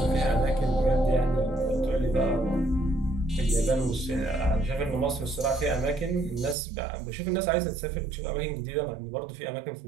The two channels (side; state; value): left; drops out; at 6.6 s